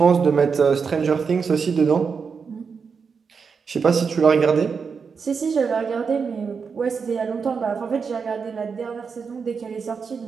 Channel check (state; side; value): quieter; left; 5.7 dB